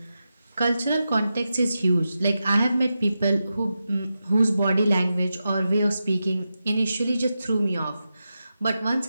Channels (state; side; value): inverted; both; correlation -0.90